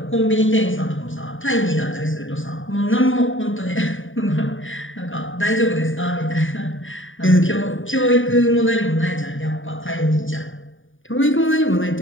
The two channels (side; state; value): right; late; 0.57 ms